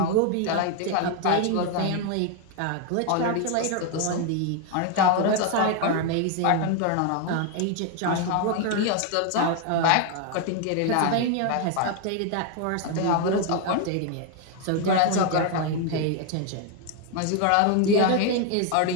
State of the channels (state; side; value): different; both; correlation 0.01